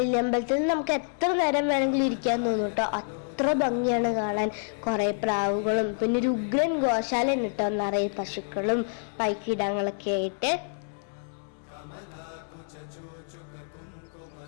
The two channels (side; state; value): right; silent; 59 dB below the other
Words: നമുക്ക് എത്ര നേരം വേണമെങ്കിലും ഇരിക്കാൻ തോന്നും കേട്ടോ. അത്ര ഭംഗിയാണ് കാണാൻ. കുറേ പ്രാവുകളും പിന്നെ ഒരു ഉഗ്രൻ ഗോശാല കിട്ടോ, നിറയെ പശുക്കളും പൈക്കിടങ്ങളൊക്കെ ആയിട്ട്.